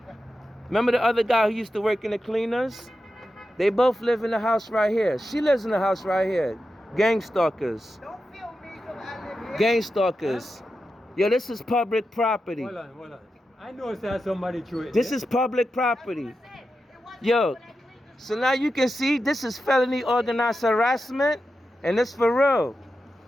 the other guy who used to work in the cleaners? They both live in the house right here. She lives in the house right here. Gang stalkers. Don't feel me because I live here. Gang stalkers. Yo, this is public property. Hold on. I know there's somebody threw it. This is public property. Yo, so now you can see this is felony organized harassment, and it's for real.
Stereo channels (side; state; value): both; normal; correlation 0.90